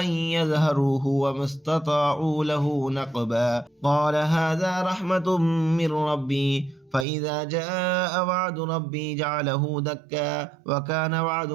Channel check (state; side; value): drops out; left; at 7.1 s